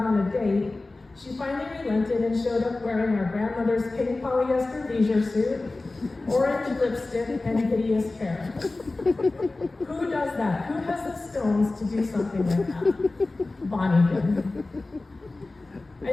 on a date, she finally relented and showed up wearing her grandmother's pink polyester leisure suit, orange lipstick, and hideous hair. Who does that? Who has the stones to do something like that? Bonnie did.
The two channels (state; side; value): quieter; right; 3.2 dB